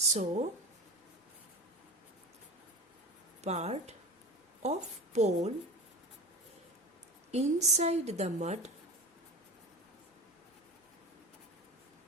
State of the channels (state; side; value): normal; both; correlation 0.29